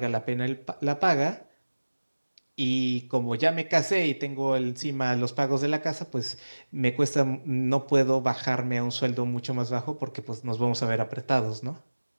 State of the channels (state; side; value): inverted; both; correlation -1.00